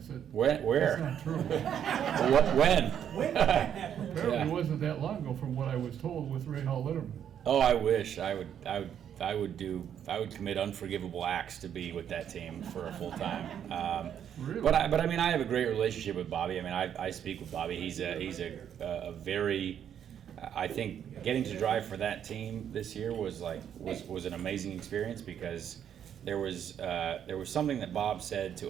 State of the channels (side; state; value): left; quieter; 9.2 dB